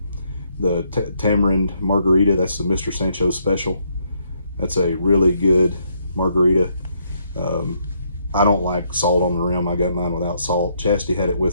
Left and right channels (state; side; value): inverted; both; correlation -0.74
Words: The Tamarind Margarita. That's the Mr. Sancho's special. That's a really good margarita. I don't like salt on the rim. I got mine without salt. Chastity had it